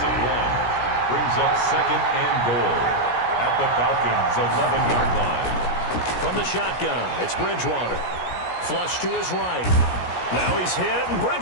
1. Brings up second and goal at the Falcons' 11-yard line. From the shotgun, it's Bridgewater. Flush to his right. Now he's hit, and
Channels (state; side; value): late; right; 17 ms